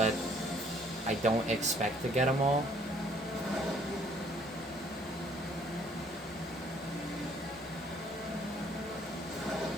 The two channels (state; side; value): normal; both; correlation 0.61